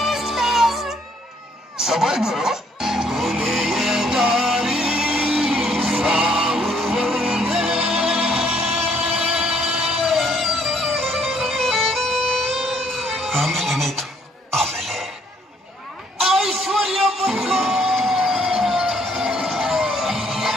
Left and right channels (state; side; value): normal; both; correlation 0.66